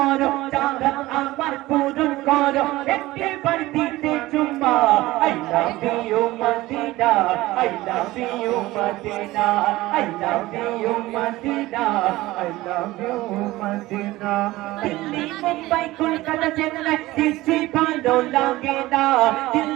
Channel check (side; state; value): left; quieter; 18.2 dB